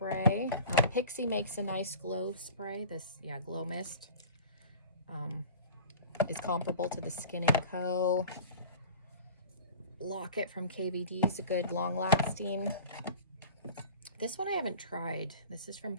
Pixie makes a nice glow spray. Glow Mist. Is comparable to the Skin & Co. Locket from KVD is a good long-lasting. This one I haven't tried. This is from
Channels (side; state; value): both; inverted; correlation -0.40